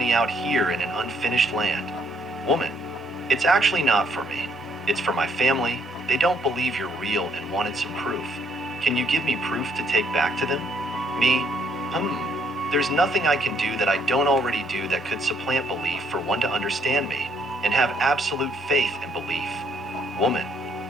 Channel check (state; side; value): normal; both; correlation 0.68